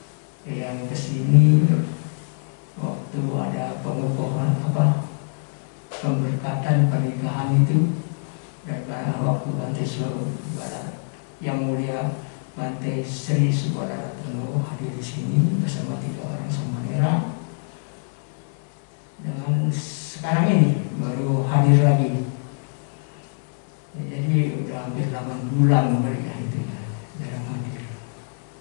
Yang ke sini waktu ada pengukuhan pemberkatan pernikahan itu, dan waktu Bante Subara yang mulia Bante Sri Subara Ratno hadir di sini bersama 3 orang samanera. Dengan sekarang ini baru hadir lagi. Ya, jadi udah hampir 8 bulan mereka itu ya jarang hadir.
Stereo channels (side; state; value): right; silent; 62 dB below the other